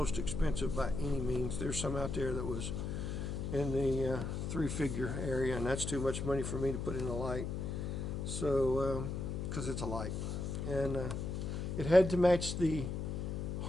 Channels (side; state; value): left; noise; hum, 3 dB below the sound